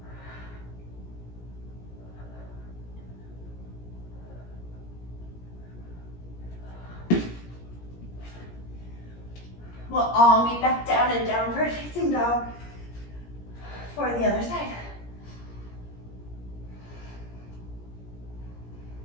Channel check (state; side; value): late; right; 17 ms